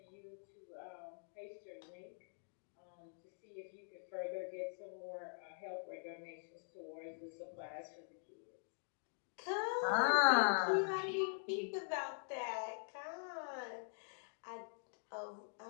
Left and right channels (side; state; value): right; silent; digital silence